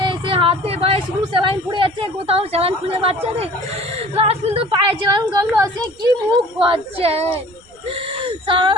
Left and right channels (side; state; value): right; noise; rumble, 30 dB below the sound